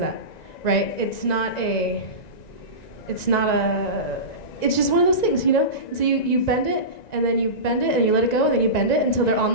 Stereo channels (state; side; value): late; right; 1.9 ms